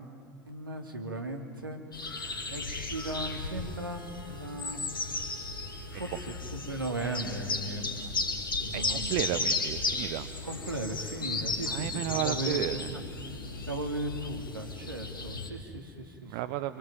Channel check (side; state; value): both; normal; correlation -0.03